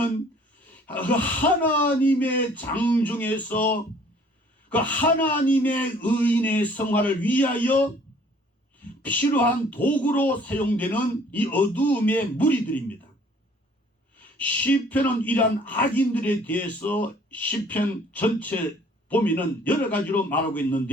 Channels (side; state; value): both; normal; correlation 0.56